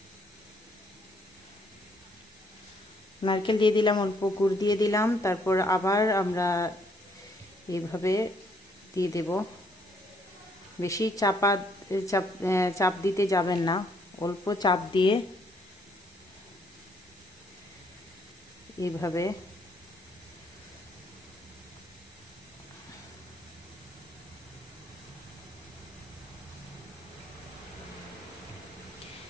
নারকেল দিয়ে দিলাম, অল্প গুড় দিয়ে দিলাম। তারপর আবার আমরা এইভাবে দিয়ে দেব। বেশি চাপ দিতে যাবেন না, অল্প চাপ দিয়ে এইভাবে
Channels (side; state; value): both; normal; correlation 0.68